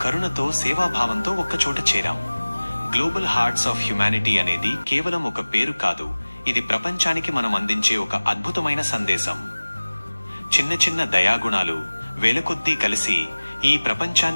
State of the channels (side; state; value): both; inverted; correlation -1.00